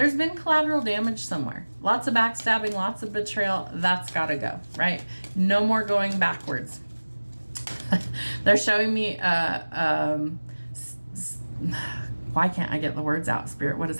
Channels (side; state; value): both; inverted; correlation -1.00